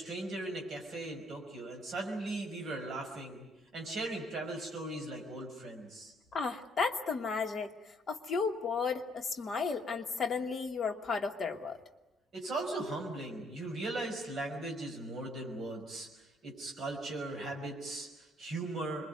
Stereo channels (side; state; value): both; normal; correlation 0.66